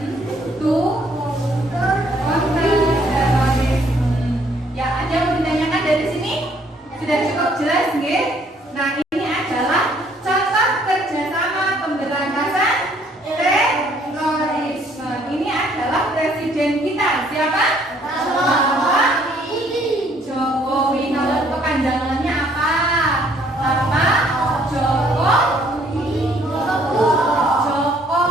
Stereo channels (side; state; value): both; normal; correlation 0.64